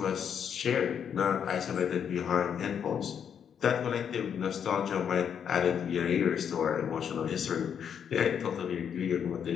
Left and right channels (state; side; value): quieter; right; 8.0 dB